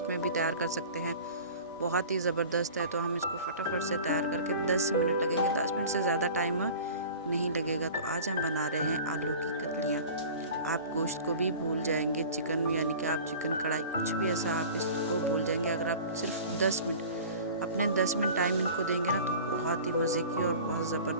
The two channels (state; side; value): inverted; both; correlation -0.40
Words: में भी तैयार कर सकते हैं। बहुत ही ज़बरदस्त है। तो हम इसको फटाफट से तैयार करके 10 मिनट लगेंगे, 10 मिनट से ज़्यादा टाइम नहीं लगेगा। तो आज हम बना रहे हैं आलू की कतलियाँ। आप गोश्त को भी भूल जाएंगे, चिकन यानी कि आप चिकन कढ़ाई कुछ भी ऐसा आप इसको भूल जाएंगे। अगर आप सिर्फ 10 मिनट अपने 10 मिनट टाइम इनको देंगे ना, तो बहुत ही मज़े की और बहुत